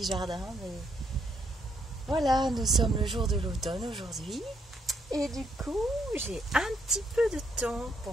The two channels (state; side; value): normal; both; correlation 0.74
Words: jardin, mais voilà, nous sommes le jour de l'automne aujourd'hui. Et du coup, j'ai un petit peu de temps pour